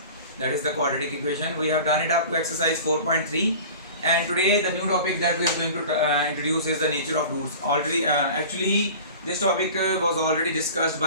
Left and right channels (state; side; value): inverted; both; correlation -0.39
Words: that is the quadratic equation. We have done it up to exercise 4.3 and today the new topic that we are going to introduce is the nature of roots. Already actually this topic was already discussed